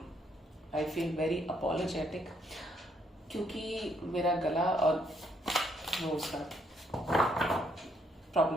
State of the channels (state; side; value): normal; both; correlation 0.71